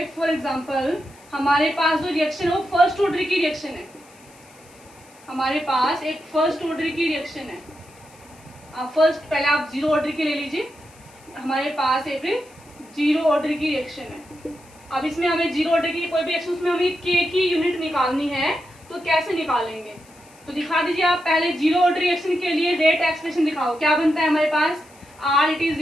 फॉर एग्जांपल हमारे पास जो रिएक्शन है वो फर्स्ट ऑर्डर की रिएक्शन है। हमारे पास एक फर्स्ट ऑर्डर की रिएक्शन है। फर्स्ट पहले आप जीरो ऑर्डर की ले लीजिए। हमारे पास एक जीरो ऑर्डर की रिएक्शन है। अब इसमें हमें जीरो ऑर्डर की कोई भी रिएक्शन, उसमें हमें के की यूनिट निकालनी है, तो कैसे निकालेंगे? तो दिखा दीजिए आप पहले जीरो ऑर्डर रिएक्शन के लिए रेट एक्सप्रेशन दिखाओ। क्या बनता है हमारे पास? R it is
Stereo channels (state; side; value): noise; left; hiss, 26 dB below the sound